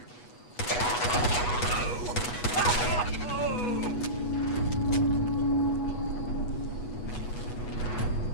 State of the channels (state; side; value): late; right; 8.2 ms